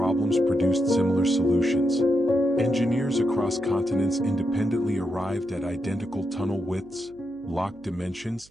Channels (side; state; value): right; noise; hum, 28 dB below the sound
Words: produced similar solutions. Engineers across continents independently arrived at identical tunnel widths, locked dimensions,